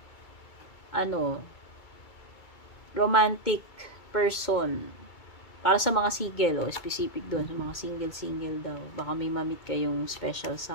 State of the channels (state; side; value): late; right; 2.3 ms